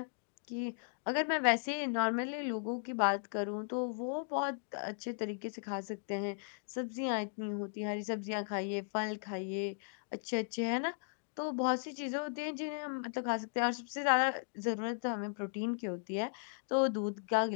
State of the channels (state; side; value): silent; right; digital silence